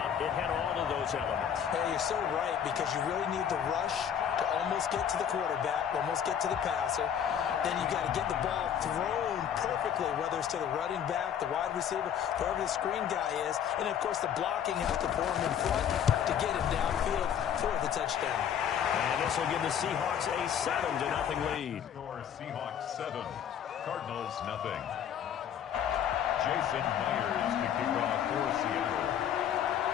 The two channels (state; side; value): quieter; right; 8.9 dB